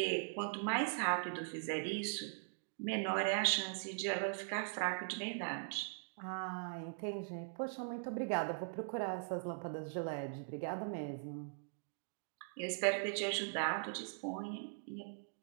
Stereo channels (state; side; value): silent; left; digital silence